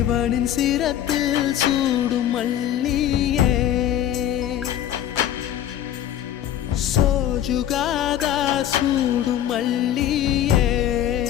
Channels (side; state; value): right; quieter; 11.2 dB